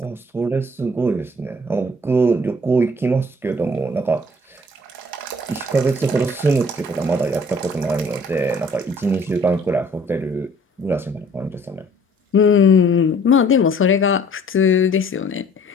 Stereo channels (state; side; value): normal; both; correlation 0.56